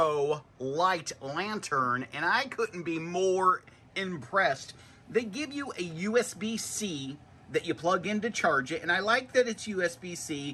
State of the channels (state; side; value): identical; both; correlation 1.00